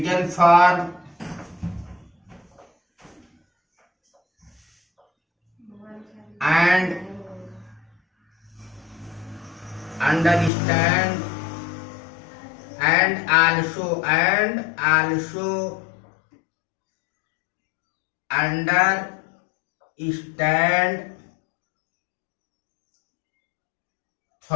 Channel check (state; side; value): drops out; right; at 10.5 s